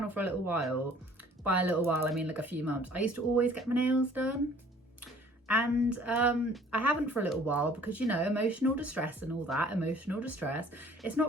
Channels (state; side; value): normal; both; correlation 0.53